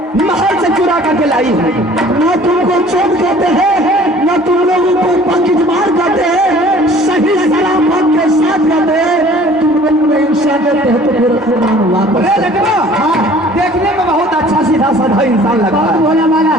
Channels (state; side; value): normal; both; correlation 0.51